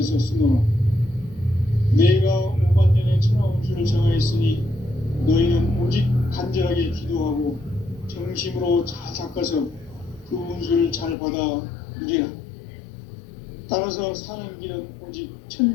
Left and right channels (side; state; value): right; drops out; at 11.2 s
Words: 쓰노라. 내가 5만 년의 천하 운수를 정하였으니 너희는 오직 간절하게 기도하고 정심으로 잘 닦아서 그 운수를 잘 받아 누리라. 따라서 사는 길은 오직